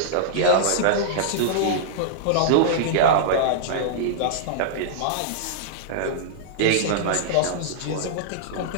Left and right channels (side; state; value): both; different; correlation -0.02